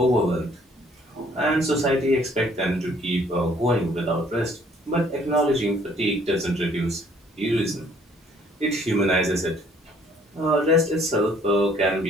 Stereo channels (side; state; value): both; normal; correlation 0.61